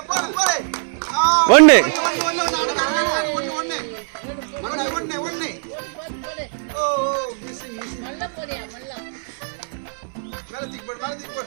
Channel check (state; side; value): silent; left; 60 dB below the other